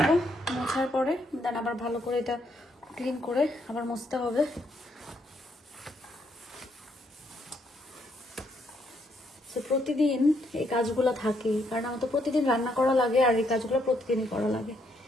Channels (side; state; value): both; normal; correlation 0.74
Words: মোছার পরে দেন আবার ভালো করে এটা ক্লিন করে আবার মুছতে হবে। প্রতিদিন এই কাজগুলো থাকে, কারণ আমার তো প্রতিদিন রান্না করা লাগে আর এই কাজগুলো প্রতিদিনই করা লাগে।